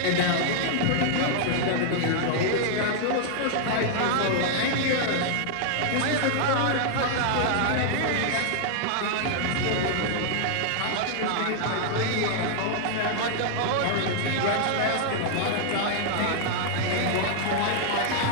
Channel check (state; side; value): different; both; correlation -0.01